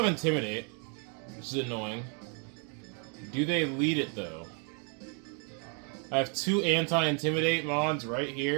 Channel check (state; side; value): quieter; left; 39.8 dB